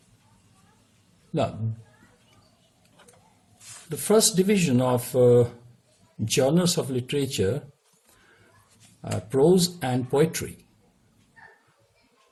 now the first division of genres of literature are prose and poetry.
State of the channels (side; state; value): both; identical; correlation 1.00